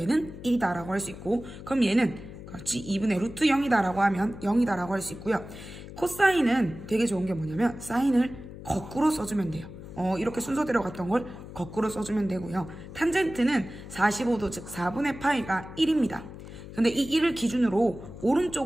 얘는 1이다라고 할 수 있고, 그럼 얘는 그렇지 2분의 루트 0이다라고 하면 0이다라고 할 수 있고요. 코사인은 되게 좋은 게 뭐냐면 사인을 거꾸로 써주면 돼요. 이렇게 순서대로 갔던 걸 거꾸로 써주면 되고요. 탄젠트는 45도 즉 4분의 파이가 1입니다. 근데 이 1을 기준으로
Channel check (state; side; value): noise; left; hum, 13 dB below the sound